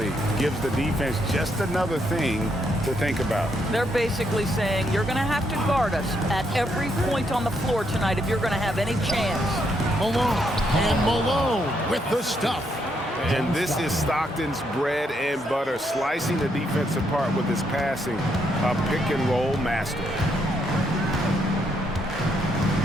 gives the defense just another thing to think about. They're basically saying you're going to have to guard us at every point on the floor tonight if you're going to have any chance. Malone with the stuff. And this is Stockton's bread and butter, slicing the defense apart with his passing, a pick-and-roll master.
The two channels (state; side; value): normal; both; correlation 0.76